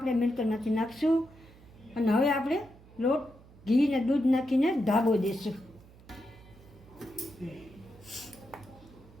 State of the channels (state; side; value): noise; right; hum, 23 dB below the sound